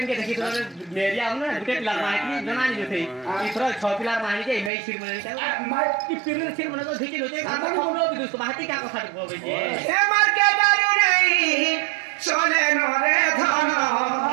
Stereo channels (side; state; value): left; drops out; at 4.7 s